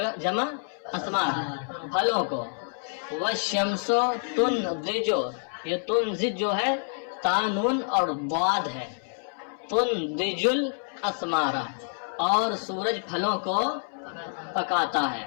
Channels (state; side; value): silent; right; 60 dB below the other